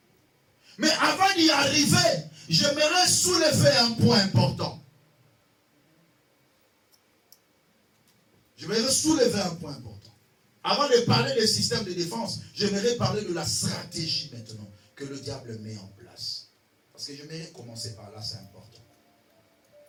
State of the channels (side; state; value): both; identical; correlation 1.00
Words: Mais avant d'y arriver, j'aimerais soulever un point important. J'aimerais soulever un point important. Avant de parler des systèmes de défense, j'aimerais parler de la stratégie maintenant que le diable met en place. Parce que j'aimerais commencer par là, c'est important.